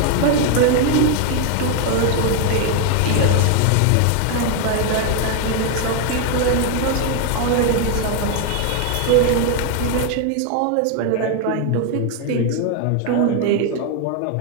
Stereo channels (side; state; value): both; different; correlation 0.01